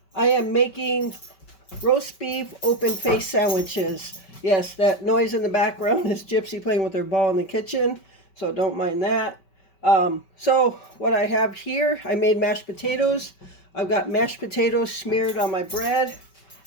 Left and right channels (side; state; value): right; late; 5.2 ms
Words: I am making roast beef open face sandwiches. Yes, that noise in the background is Gypsy playing with her ball in the kitchen, so don't mind that. So what I have here, I made mashed potatoes. I've got mashed potatoes smeared on my bread,